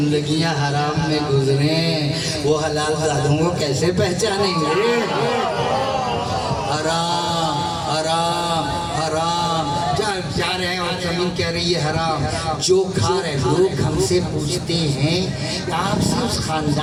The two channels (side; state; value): both; identical; correlation 1.00